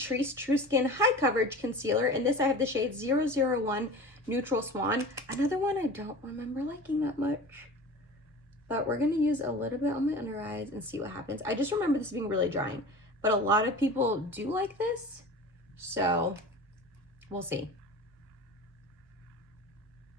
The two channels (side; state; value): both; normal; correlation 0.36